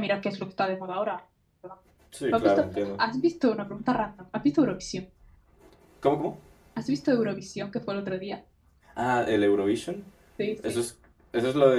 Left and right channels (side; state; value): both; identical; correlation 1.00